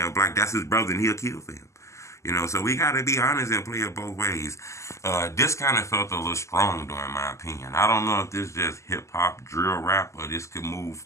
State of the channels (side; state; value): right; late; 0.14 ms